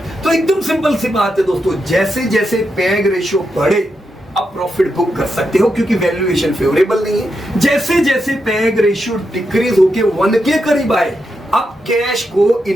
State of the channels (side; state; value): both; normal; correlation 0.85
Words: तो एकदम सिंपल सी बात है दोस्तों, जैसे जैसे पैग रेशियो बढ़े आप प्रॉफिट बुक कर सकते हो क्योंकि वैल्यूएशन फेवरेबल नहीं है। जैसे जैसे पैग रेशियो डिक्रीज होके 1 के करीब आए आप कैश को